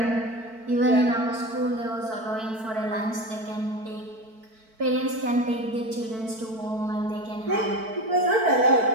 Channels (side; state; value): left; late; 4.5 ms